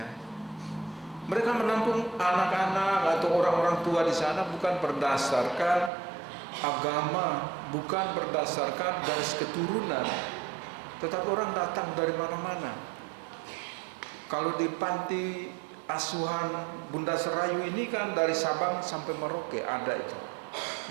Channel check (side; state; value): left; drops out; at 5.9 s